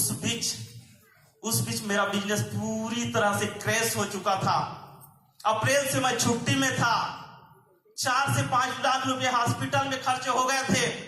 उस बीच मेरा बिजनेस पूरी तरह से क्रैश हो चुका था। अप्रैल से मैं छुट्टी में था। 4 से 5 लाख रुपए हॉस्पिटल में खर्चे हो गए थे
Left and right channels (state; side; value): identical; both; correlation 1.00